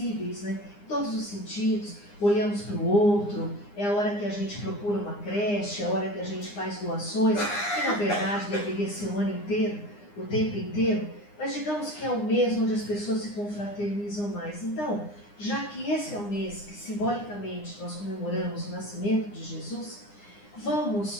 né? Em todos os sentidos, olhamos para o outro, é a hora que a gente procura uma creche, é a hora que a gente faz doações, que na verdade deveria ser o ano inteiro, o tempo inteiro, mas digamos que é o mês onde as pessoas se confraternizam mais. Então, já que esse é o mês que simbolicamente nós comemoramos o nascimento de Jesus,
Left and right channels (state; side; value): late; right; 9.8 ms